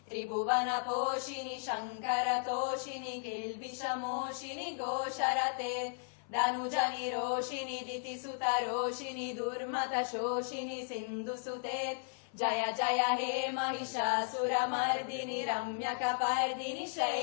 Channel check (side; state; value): right; silent; 54 dB below the other